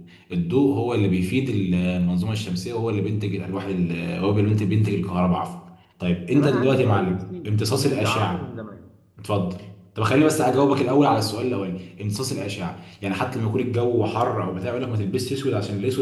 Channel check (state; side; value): identical; both; correlation 1.00